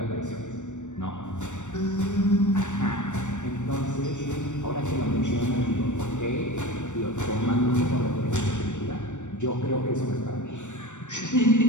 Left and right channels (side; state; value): right; late; 0.85 ms